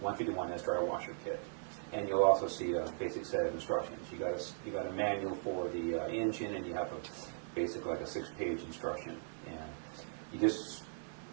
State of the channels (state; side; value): silent; left; digital silence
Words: dryer washer kit. And you'll also see a basic set of instructions. You got a manual for the engine, and you have basically like a 6-page instruction. And you just